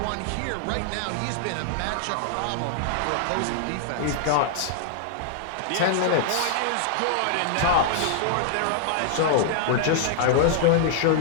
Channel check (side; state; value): both; different; correlation -0.01